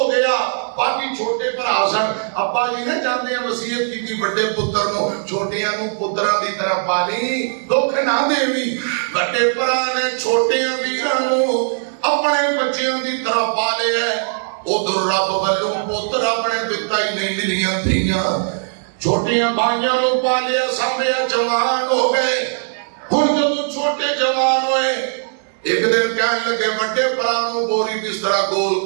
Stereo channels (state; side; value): silent; left; digital silence